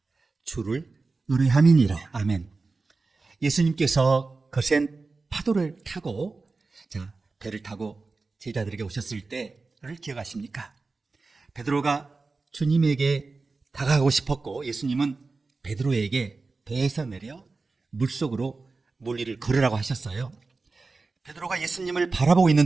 주를 의뢰함이니라. 아멘. 예수님께서 거센 파도를 타고 배를 타고 제자들에게 오셨을 때를 기억하십니까? 베드로가 주님에게 다가가고 싶었고 예수님은 베드로에게 배에서 내려 물속으로 물위를 걸으라고 하셨어요. 베드로가 예수님을 바라보고 있는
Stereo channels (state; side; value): quieter; left; 3.9 dB